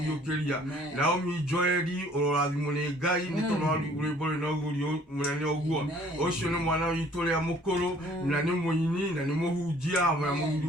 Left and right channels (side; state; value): both; normal; correlation 0.57